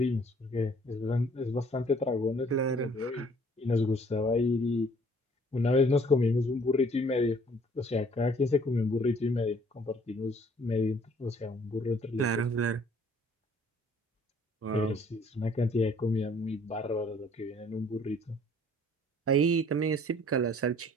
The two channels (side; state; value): both; normal; correlation 0.58